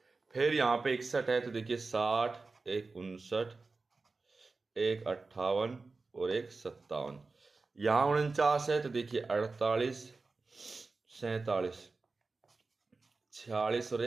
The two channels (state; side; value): quieter; left; 3.9 dB